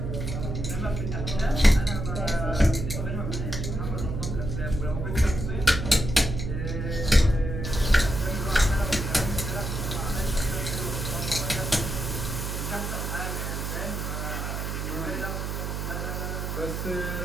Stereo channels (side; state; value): right; noise; hum, 3 dB below the sound